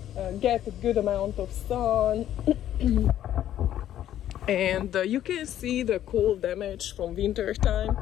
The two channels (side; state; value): right; quieter; 11.7 dB